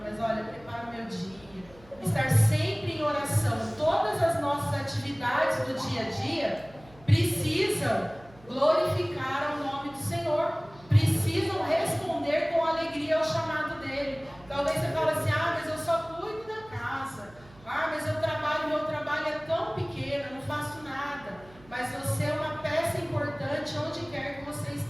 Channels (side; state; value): right; noise; hum, 24 dB below the sound